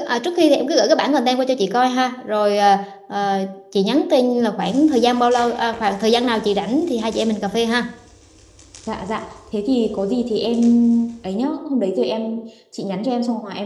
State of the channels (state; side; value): identical; both; correlation 1.00